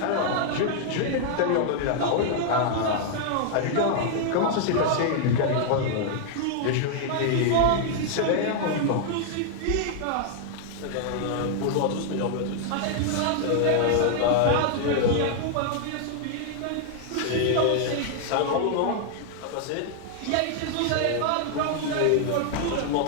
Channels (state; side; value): different; both; correlation 0.00